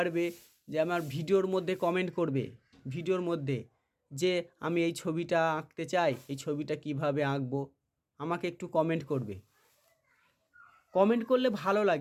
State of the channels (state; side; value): identical; both; correlation 1.00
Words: যে আমার ভিডিওর মধ্যে কমেন্ট করবে, ভিডিওর মধ্যে যে আমি এই ছবিটা আঁকতে চাই, এই ছবিটা কিভাবে আঁকবো, আমাকে একটু কমেন্ট করবে। কমেন্ট করলে ভালো